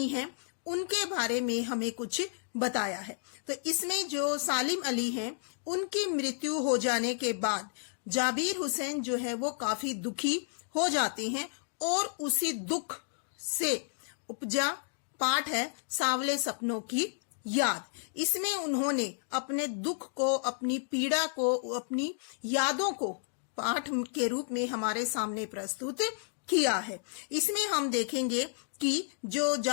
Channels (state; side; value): silent; right; digital silence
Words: हैं उनके बारे में हमें कुछ बताया है। तो इसमें जो सालिम अली हैं उनकी मृत्यु हो जाने के बाद जाबिर हुसैन जो है वो काफी दुखी हो जाते हैं और उसी दुख से उपजा पाठ है सांवले सपनों की याद। इसमें उन्होंने अपने दुख को, अपनी पीड़ा को, अपनी यादों को पाठ के रूप में हमारे सामने प्रस्तुत किया है। इसमें हम देखेंगे कि जो